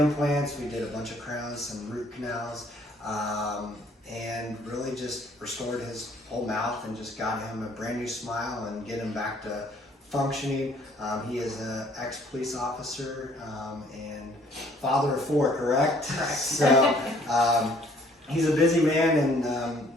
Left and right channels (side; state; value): both; normal; correlation 0.60